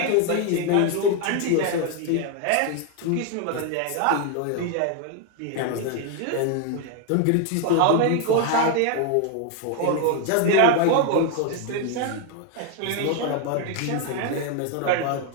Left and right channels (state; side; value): different; both; correlation 0.01